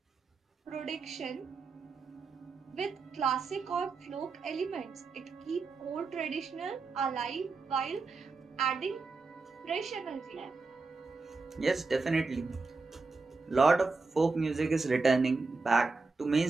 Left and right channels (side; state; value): left; quieter; 4.0 dB